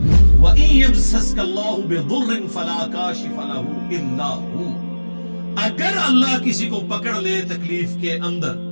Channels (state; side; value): inverted; both; correlation -1.00